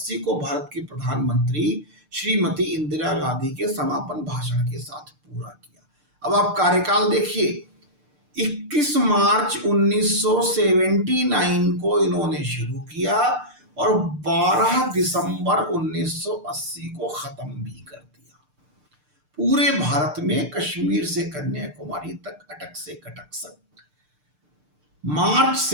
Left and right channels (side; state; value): left; late; 6.7 ms